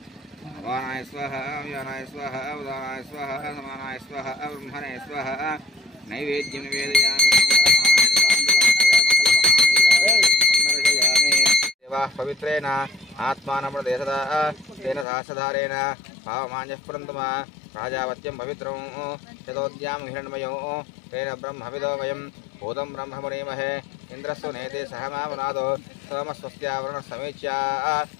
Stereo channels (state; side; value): drops out; right; at 15.1 s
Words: वानाय स्वाहा व्यानाय स्वाहा उदानाय स्वाहा समानाय स्वाहा ब्रह्मणे स्वाहा नैवेद्यं निवेदयामि। पवित्रेण आत्मानमृदेशदा तेन सहस्रधारेण भावमान्यः पुरन्दमा राजावत्यं पवित्रं यतोद्यां हिरण्मयो तेन ब्रह्मविदो वयं भूतं ब्रह्म मुनीमहे इन्द्रस्तु नेते सहमावनादो सोमस्वस्त्यावरणः समीच्या